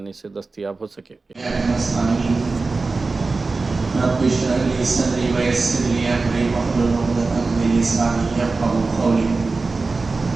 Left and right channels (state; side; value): quieter; left; 3.8 dB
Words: سے دستیاب ہو سکے۔ رب اشرح لي صدري ويسر لي امري واحلل عقدة من لساني يفقهوا قولي۔